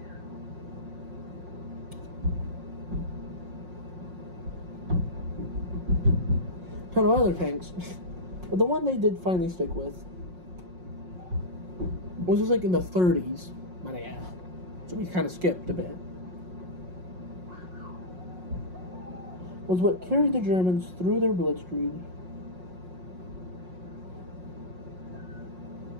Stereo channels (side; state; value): left; late; 5.5 ms